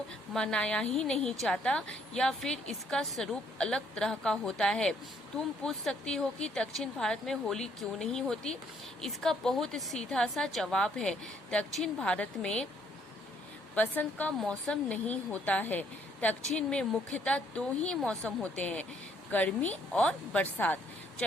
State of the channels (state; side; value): normal; both; correlation 0.67